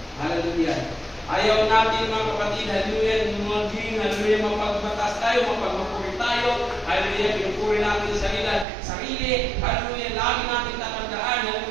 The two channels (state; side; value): drops out; left; at 8.7 s